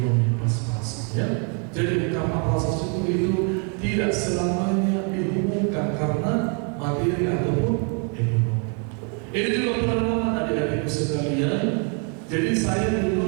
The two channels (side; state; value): left; quieter; 38.5 dB